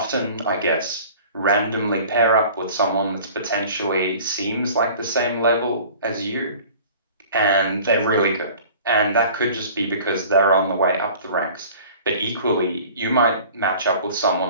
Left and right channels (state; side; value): inverted; both; correlation -0.45